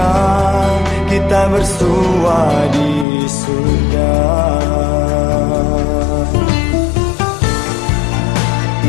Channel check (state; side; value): drops out; right; at 3.1 s